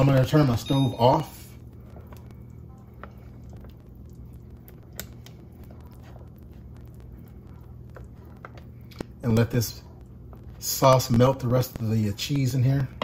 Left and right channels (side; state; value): both; identical; correlation 1.00